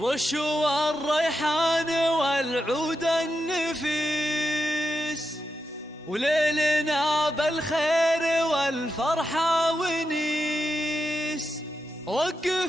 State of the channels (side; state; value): both; normal; correlation 0.87